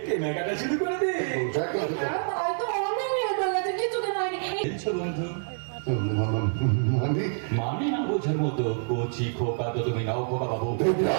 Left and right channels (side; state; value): left; silent; 60 dB below the other